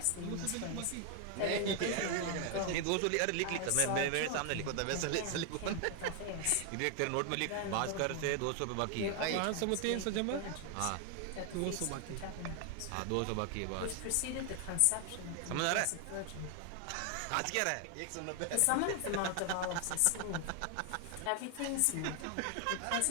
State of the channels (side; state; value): both; different; correlation 0.00